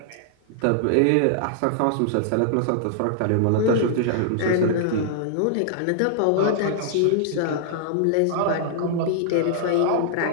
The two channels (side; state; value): both; different; correlation -0.01